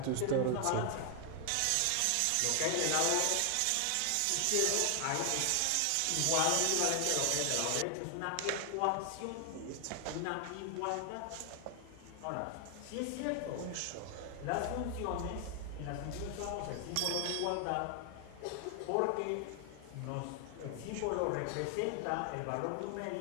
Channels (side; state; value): both; different; correlation 0.00